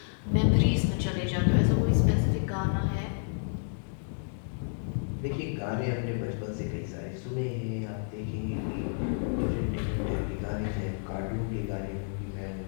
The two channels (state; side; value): silent; right; digital silence